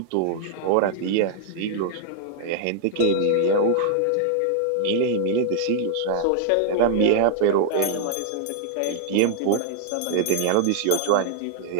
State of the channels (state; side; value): different; both; correlation 0.00